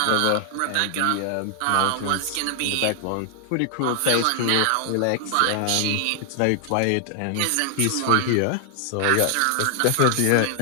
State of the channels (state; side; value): different; both; correlation 0.00